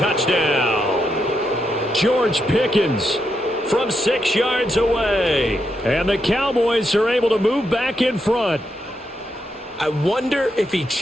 George Pickens from 6 yards away. And the Cowboys are able to move back in front. I wonder if he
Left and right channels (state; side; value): normal; both; correlation 0.82